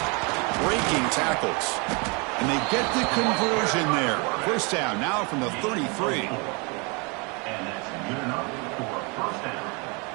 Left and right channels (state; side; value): quieter; left; 31.3 dB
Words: Breaking tackles. And they get the conversion there. First down now from the 33. And that's good enough for a first down.